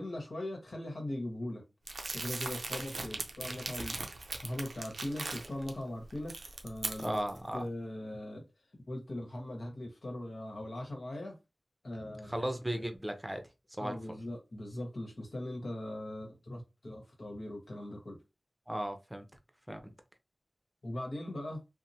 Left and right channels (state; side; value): normal; both; correlation 0.96